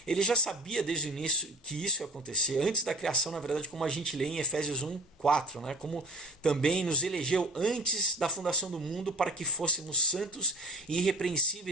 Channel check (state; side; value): normal; both; correlation 0.37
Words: Ele já sabia desde o início que isso ia acontecer, antes da criação, na verdade, como a gente lê em Efésios 1:4, né? Como também nos elegeu antes da fundação do mundo para que fôssemos santos e